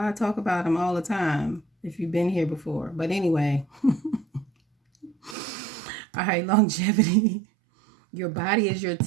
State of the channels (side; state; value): left; drops out; at 5.4 s